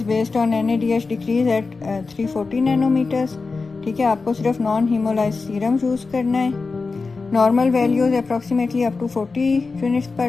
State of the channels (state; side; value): quieter; right; 4.2 dB